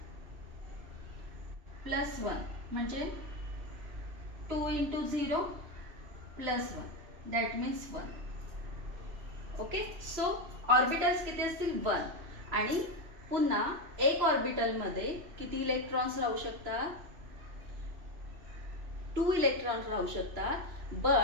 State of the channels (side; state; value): left; late; 2.9 ms